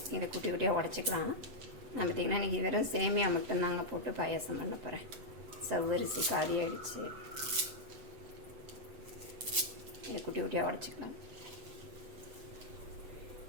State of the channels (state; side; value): late; left; 8.1 ms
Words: இதை குட்டி குட்டியாக உடச்சிக்கலாம். நான் பார்த்திங்கன்னா இன்றைக்கி வெறும் சேமியா மட்டும்தாங்க போட்டு பாயாசம் பண்ண போகிறேன். சவ்வரிசி காலி ஆகிடுச்சு. இதை குட்டி குட்டியாக உடச்சிக்கலாம்.